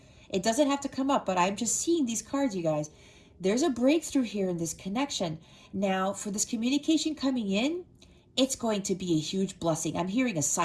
It doesn't have to come up, but I'm just seeing these cards, you guys. There's a breakthrough here in this connection. Now, for this communication coming in, it's going to be a huge blessing. I'm hearing a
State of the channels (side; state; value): both; identical; correlation 1.00